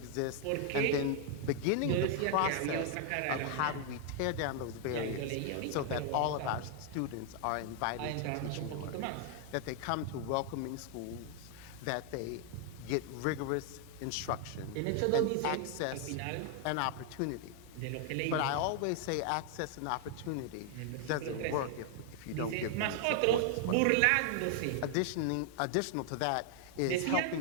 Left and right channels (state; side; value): different; both; correlation 0.00